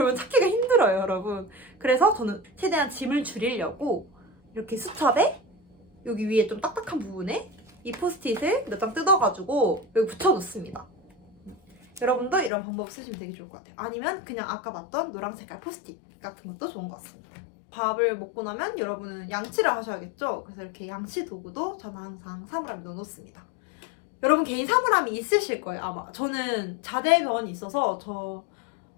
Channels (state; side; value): drops out; right; at 12.5 s